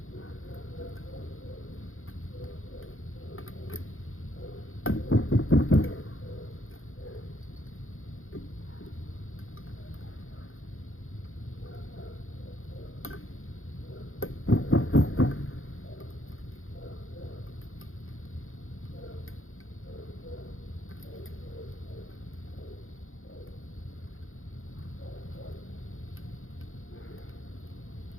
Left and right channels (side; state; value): right; late; 0.60 ms